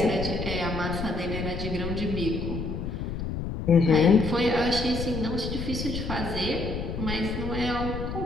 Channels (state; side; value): noise; left; rumble, 5 dB below the sound